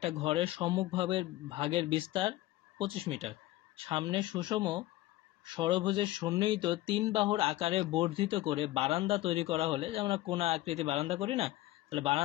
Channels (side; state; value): right; quieter; 16.6 dB